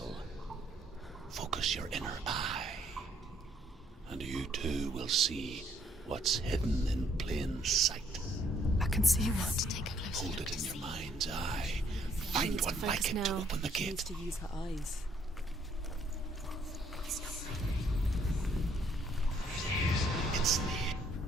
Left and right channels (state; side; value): normal; both; correlation 0.67